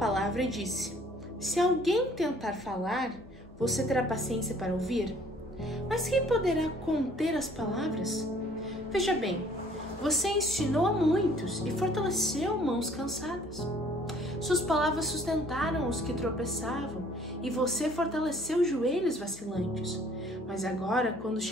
e disse: Se alguém tentar falar, você terá paciência para ouvir? Mas quem poderá conter as palavras? Veja bem, você ensinou a muitos e fortaleceu mãos cansadas. Suas palavras sustentaram os que tropeçavam e você fortaleceu joelhos vacilantes. Mas agora, quando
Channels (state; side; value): normal; both; correlation 0.57